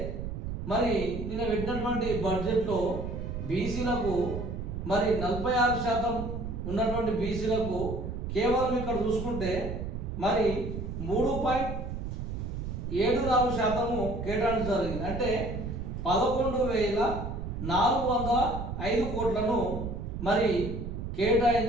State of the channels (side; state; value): right; noise; rumble, 5 dB below the sound